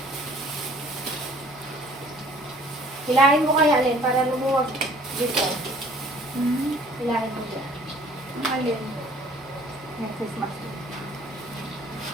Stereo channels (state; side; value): normal; both; correlation 0.55